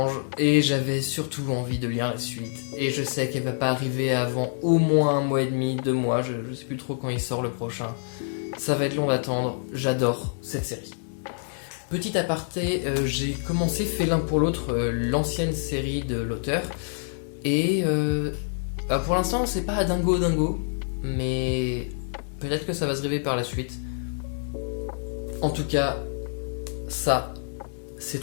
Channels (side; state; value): right; silent; 60 dB below the other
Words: et j'avais surtout envie de lire la suite. Et je sais qu'elle va pas arriver avant au moins 1 mois et demi, 2 mois, je sais plus trop quand il sort le prochain. Ça va être long d'attendre, j'adore cette série. Petit aparté, j'ai commencé fait l'un pour l'autre l'ancienne série de l'auteur. Et pour l'instant c'est pas dingo, mais peut-être que ça va se révéler par la suite. En tout cas, ça, c'est